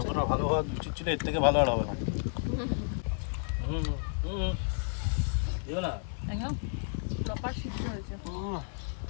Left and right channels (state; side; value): silent; right; 57 dB below the other